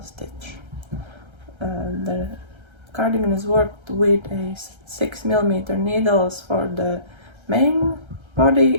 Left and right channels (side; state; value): left; late; 1.3 ms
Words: stitch. The cardigan is worked with a 6mm needles for the main